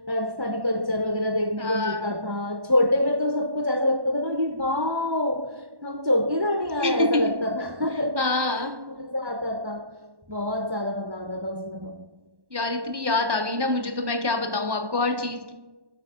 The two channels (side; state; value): left; late; 1.1 ms